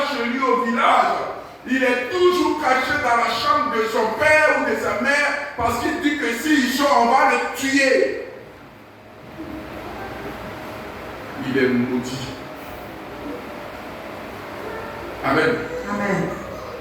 chez lui au village, il est toujours caché dans la chambre de son père ou de sa mère parce qu'il dit que s'il sort, on va le tuer. Il est maudit. Amen. Amen.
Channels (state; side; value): identical; both; correlation 1.00